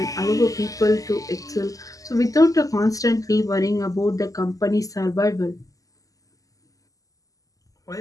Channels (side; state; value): right; late; 0.17 ms